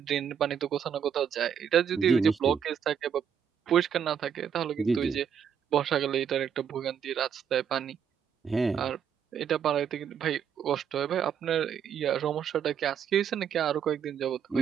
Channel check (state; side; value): quieter; left; 8.0 dB